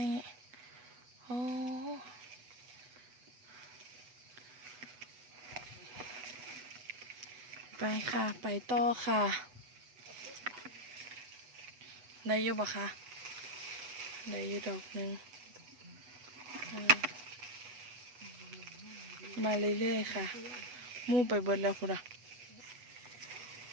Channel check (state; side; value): late; left; 8.1 ms